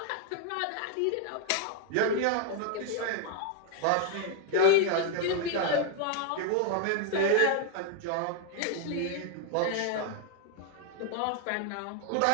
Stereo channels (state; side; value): different; both; correlation 0.00